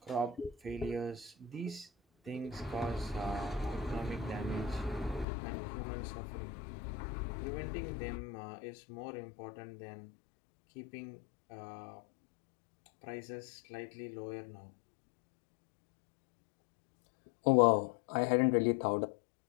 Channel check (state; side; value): drops out; right; at 5.2 s